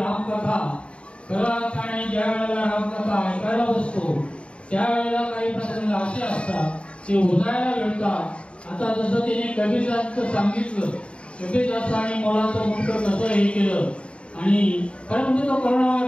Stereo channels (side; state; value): right; late; 0.059 ms